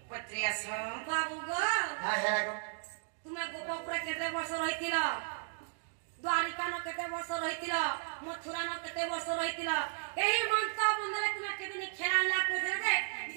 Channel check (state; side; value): silent; left; digital silence